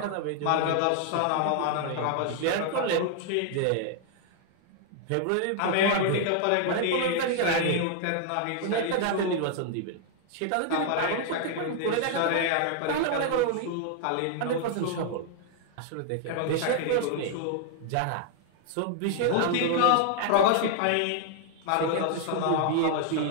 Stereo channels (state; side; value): different; both; correlation 0.00